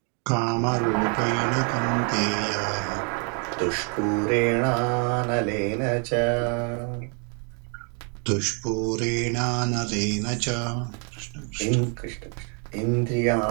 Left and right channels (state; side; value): quieter; left; 38.7 dB